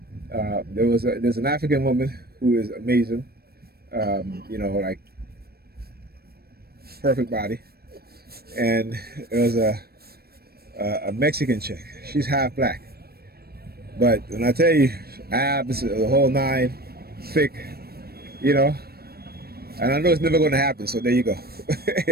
an African woman who is amazing. You know, like perfect body, and there was a Mexican chick. She's half black, but when I tell you, abs, the whole nine, thick, you know, and I know it's never going to happen. So there you go.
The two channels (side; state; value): left; late; 0.45 ms